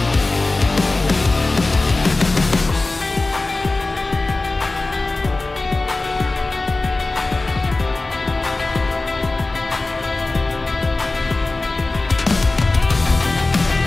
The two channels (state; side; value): quieter; right; 3.2 dB